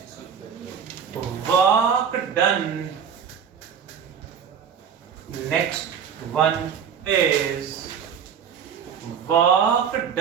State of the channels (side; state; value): left; quieter; 7.5 dB